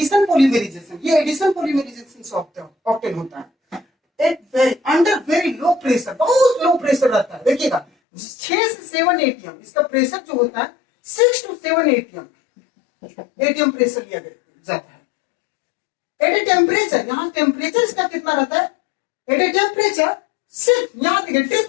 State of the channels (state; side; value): drops out; right; at 7.9 s